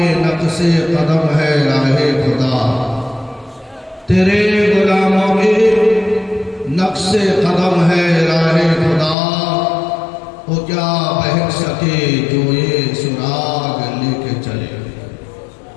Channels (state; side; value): drops out; right; at 9.2 s